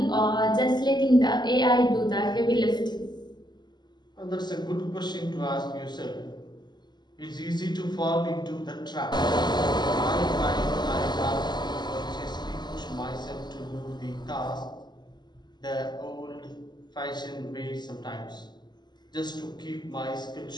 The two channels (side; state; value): right; late; 0.21 ms